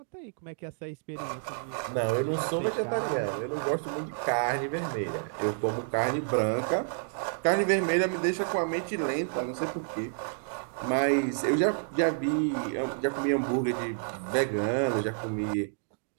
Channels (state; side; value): silent; left; digital silence